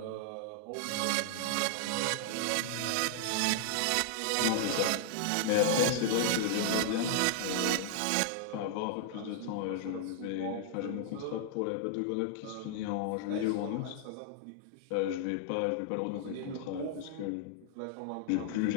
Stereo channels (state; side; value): different; both; correlation 0.00